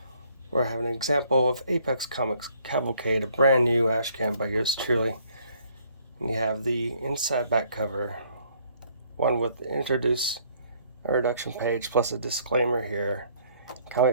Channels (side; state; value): both; inverted; correlation -0.63